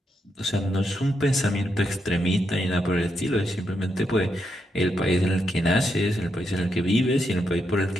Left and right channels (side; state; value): both; normal; correlation 0.81